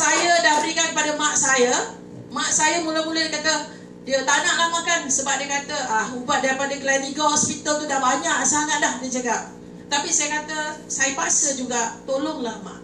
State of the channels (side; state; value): both; identical; correlation 1.00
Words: dah berikan kepada mak saya. Mak saya mula-mula dia kata dia tak nak makan sebab dia kata ubat daripada Gleneagles Hospital tu dah banyak sangat dah, dia cakap. Tapi saya kata saya paksa juga, tolonglah mak,